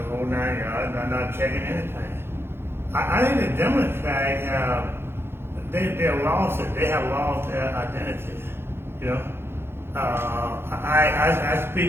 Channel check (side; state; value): left; late; 0.11 ms